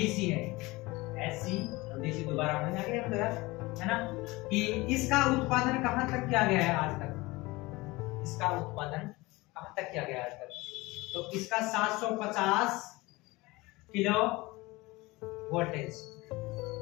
है, एसी और डीसी दोबारा होने लगे हम यार, है ना, कि इसका उत्पादन कहां तक किया गया है आज तक? इसका उत्पादन कहां तक किया गया है आज तक? तो इसका 750 किलो वोल्टेज,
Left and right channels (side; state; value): right; quieter; 21.9 dB